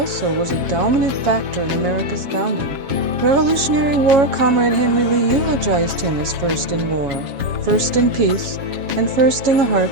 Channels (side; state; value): left; late; 7.3 ms